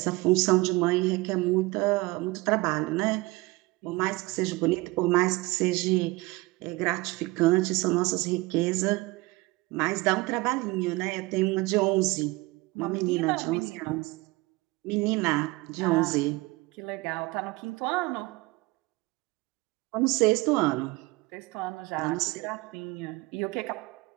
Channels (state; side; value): quieter; left; 22.4 dB